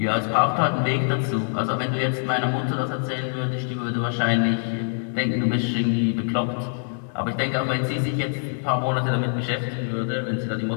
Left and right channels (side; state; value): right; silent; digital silence